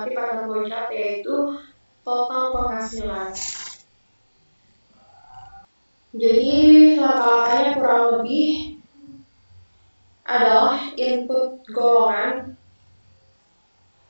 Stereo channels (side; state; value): both; inverted; correlation -1.00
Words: pada flowchart, yaitu total penghasilan. Jadi langkah-langkahnya kurang lebih adalah input golongan,